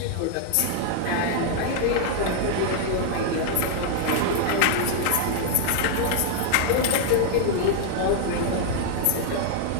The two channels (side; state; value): both; different; correlation -0.01